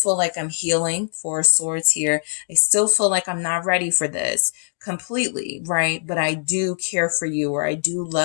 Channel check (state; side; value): silent; right; digital silence